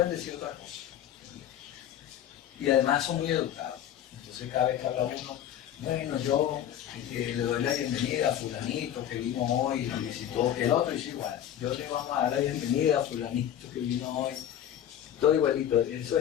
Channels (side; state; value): right; quieter; 10.8 dB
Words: decir otra cosa. Y además son muy educados. Entonces cada vez que habla uno, bueno, yo le doy la bienvenida a fulanito que vino hoy y visitó, el otro dice igual, yo le vamos a dar la bienvenida a fulanito que vino hoy, todo igualito, eso